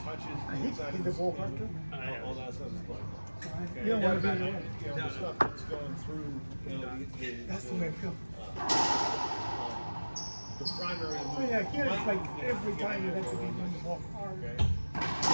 touches I hate inside to of the ball speaker, after. all that stuff is fun. Okay. You don't want to be there. You know, the stuff that's going through, you know, That's the way I feel. the primary. Oh yeah, here it's like every time you have to be doing the ball hard. Okay.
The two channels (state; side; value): inverted; both; correlation -1.00